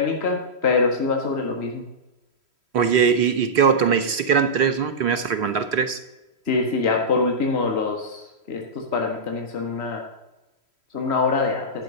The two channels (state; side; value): late; left; 3.4 ms